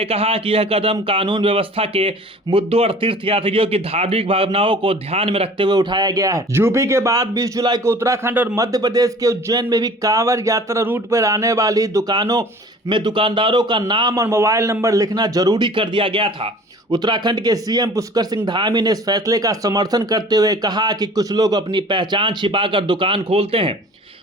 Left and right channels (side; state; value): both; normal; correlation 0.46